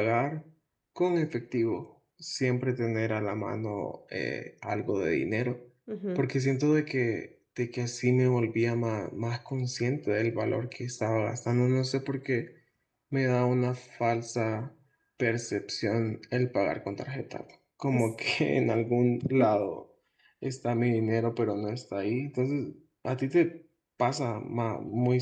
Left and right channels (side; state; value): both; identical; correlation 1.00